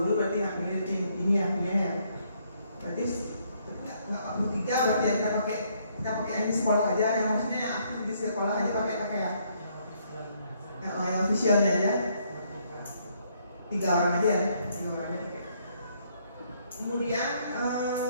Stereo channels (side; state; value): both; inverted; correlation -0.69